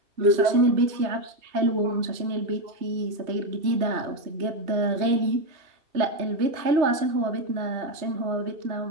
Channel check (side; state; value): left; late; 3.2 ms